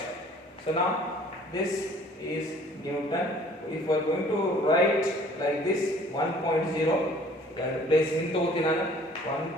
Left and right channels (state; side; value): normal; both; correlation 0.54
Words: So now this is Newton. If we are going to write like this 1.0, place into